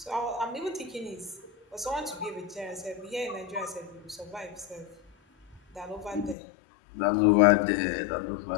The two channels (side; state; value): right; drops out; at 6.4 s